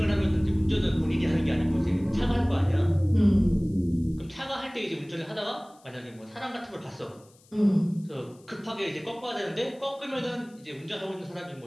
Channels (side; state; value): left; noise; hiss, 29 dB below the sound